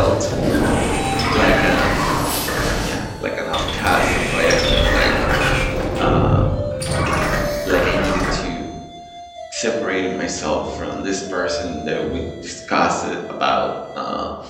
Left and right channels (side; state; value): both; identical; correlation 1.00